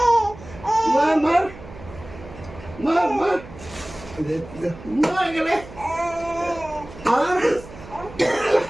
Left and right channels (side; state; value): right; noise; hum, 16 dB below the sound